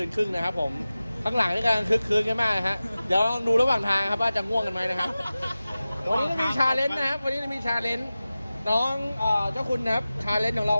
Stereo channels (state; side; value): inverted; both; correlation -0.96